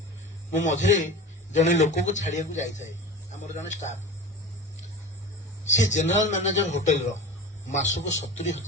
ମୁଁ ମଝିରେ ଜଣେ ଲୋକକୁ ଛାଡିବାକୁ ଯାଇଥାଏ, ଆମର ଜଣେ ଷ୍ଟାଫ, ସେ ଜେନେରାଲ ମ୍ୟାନେଜର ହୋଟେଲର, ମାସକୁ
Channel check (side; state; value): both; normal; correlation 0.31